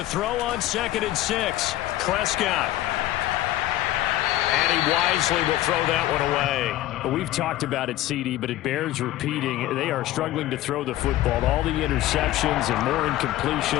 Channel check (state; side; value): quieter; right; 14.8 dB